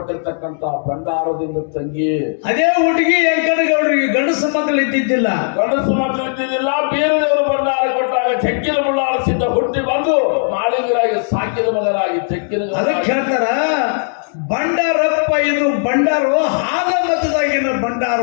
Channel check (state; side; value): silent; right; digital silence